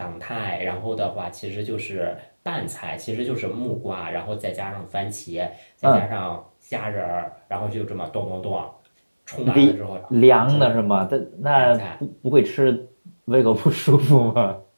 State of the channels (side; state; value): both; inverted; correlation -1.00